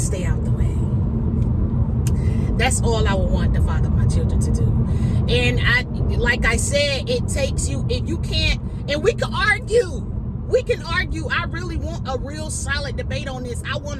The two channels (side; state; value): both; identical; correlation 1.00